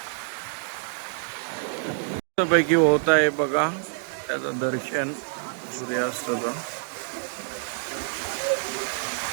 पैकी होत आहे बघा त्याचं दर्शन सूर्यास्ताचं.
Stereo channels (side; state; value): left; silent; digital silence